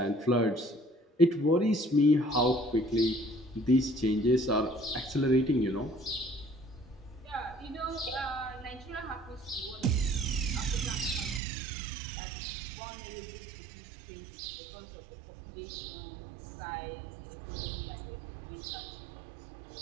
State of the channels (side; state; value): left; drops out; at 11.4 s